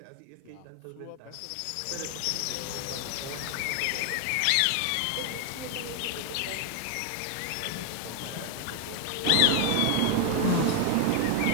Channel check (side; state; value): both; different; correlation 0.00